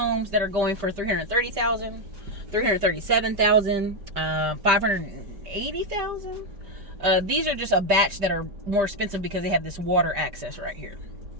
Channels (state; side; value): late; left; 5.1 ms